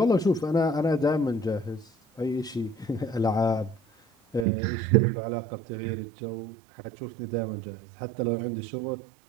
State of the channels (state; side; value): drops out; left; at 4.5 s